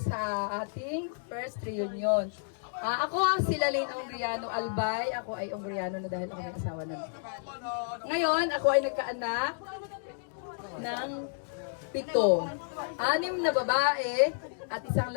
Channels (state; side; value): silent; right; digital silence